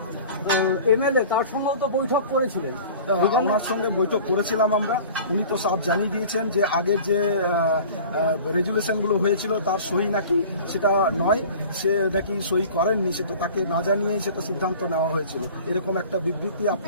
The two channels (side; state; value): both; inverted; correlation -0.42